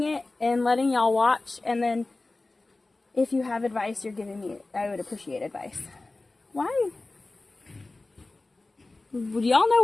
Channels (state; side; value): quieter; right; 3.2 dB